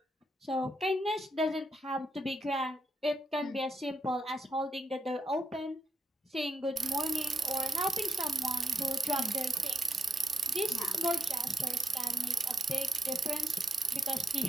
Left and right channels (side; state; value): both; normal; correlation 0.83